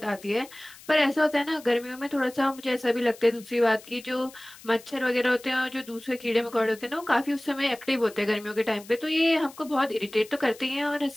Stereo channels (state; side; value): noise; left; hiss, 20 dB below the sound